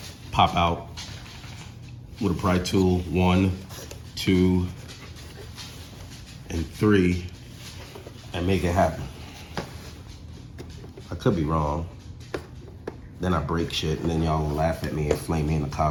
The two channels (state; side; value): identical; both; correlation 1.00